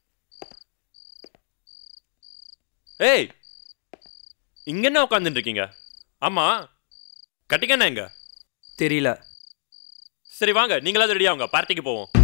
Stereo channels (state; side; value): silent; right; digital silence